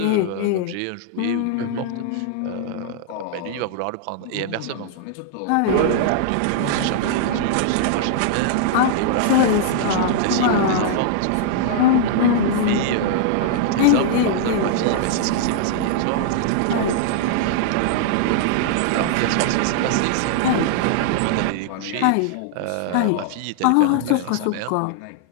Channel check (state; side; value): different; both; correlation -0.01